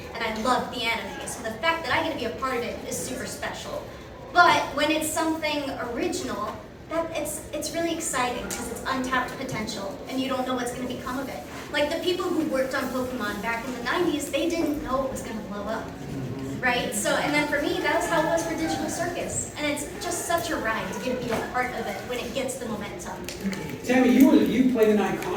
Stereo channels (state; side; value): identical; both; correlation 1.00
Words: and I loved the anime. So the fact that I get to be a part of it is super special. But when it's something original, it's really exciting because it's untapped potential and you don't know what's going to become of it. Like the people who worked on Pokemon back in the 90s, they didn't know it was going to blow up. Right? So, and then for me, that was how it was for Digital Circus. And it's just such a ride to get to be a part of it when it gets the momentum. Tami, you played an